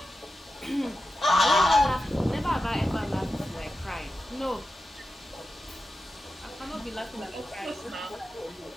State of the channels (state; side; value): normal; both; correlation 0.91